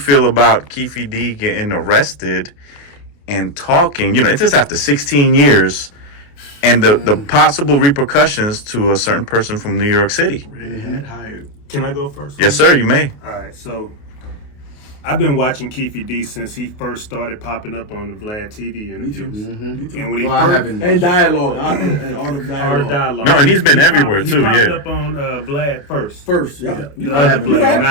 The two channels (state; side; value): late; right; 28 ms